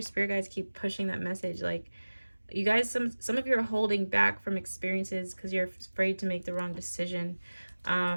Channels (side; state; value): both; inverted; correlation -1.00